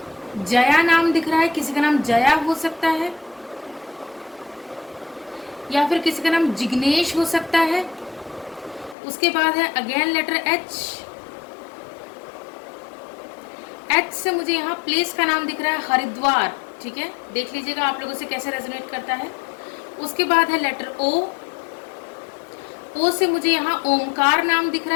जया नाम दिख रहा है, किसी का नाम जया हो सकता है या फिर किसी का नाम जिग्नेश हो सकता है। उसके बाद है अगेन लेटर एच, एच से मुझे यहाँ प्लेस का नाम दिख रहा है हरिद्वार, ठीक है, देख लीजिएगा आप लोगों से कैसे रेजोनेट करता है। उसके बाद है लेटर ओ, ओ से मुझे यहाँ ओमकार नाम दिख रहा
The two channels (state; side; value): drops out; right; at 9.0 s